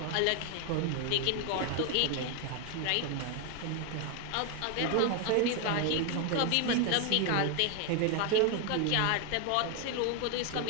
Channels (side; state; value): both; different; correlation 0.01